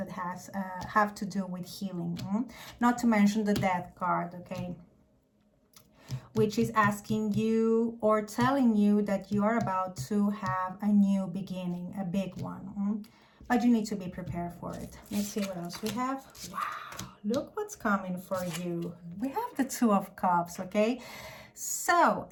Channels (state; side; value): identical; both; correlation 1.00